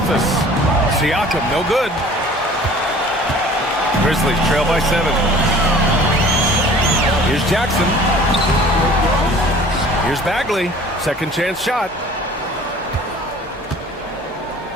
Siakam, no good. Grizzlies trail by 7. Here's Jackson. Here's Bagley. Second chance shot.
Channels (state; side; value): normal; both; correlation 0.48